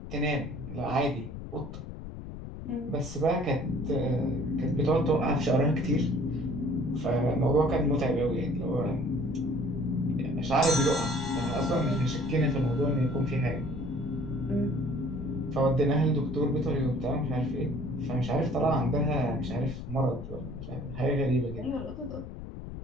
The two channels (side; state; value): left; noise; rumble, 10 dB below the sound